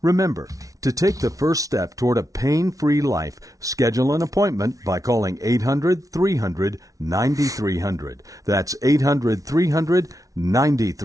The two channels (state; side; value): late; left; 0.17 ms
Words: Remember, to take the first step toward a pain-free life, schedule an appointment by calling 800-300-9300. That's